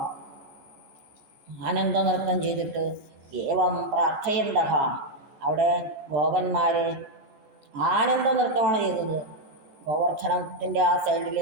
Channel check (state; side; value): late; left; 15 ms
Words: ആനന്ദനൃത്തം ചെയ്തിട്ട്, ഏവം പ്രാർത്ഥയന്തഹ, അവിടെ ഗോപന്മാർ ആനന്ദനൃത്തമാണ് ചെയ്തത്. ഗോവർദ്ധനത്തിൻ്റെ ആ